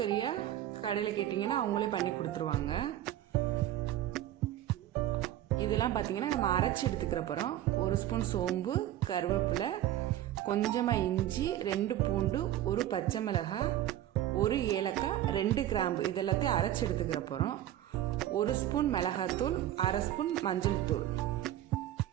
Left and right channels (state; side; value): quieter; left; 12.8 dB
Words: கடையில் கேட்டிங்கன்னா அவங்களே பண்ணி கொடுத்துருவாங்க. இதெல்லாம் பார்த்தீங்கன்னா நம்ம அரைச்சி எடுத்துக்கிற போகிறோம். 1 ஸ்பூன் சோம்பு, கருவேப்பிலை, கொஞ்சமாக இஞ்சி, 2 பூண்டு, 1 பச்சை மிளகாய், 1 ஏலக்காய், 2 கிராம்பு, இதெல்லாத்தையும் அரைச்சி எடுத்துக்கிற போகிறோம். 1 ஸ்பூன் மிளகாத்தூள், 1/2 ஸ்பூன் மஞ்சள் தூள்,